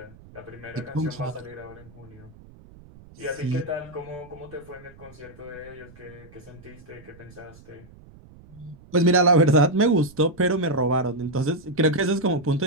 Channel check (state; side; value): noise; right; rumble, 22 dB below the sound